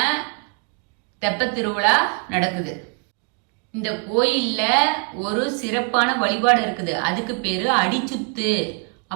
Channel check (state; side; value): quieter; left; 34.5 dB